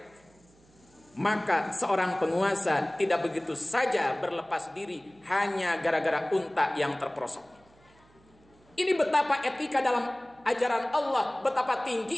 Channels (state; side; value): noise; right; hum, 30 dB below the sound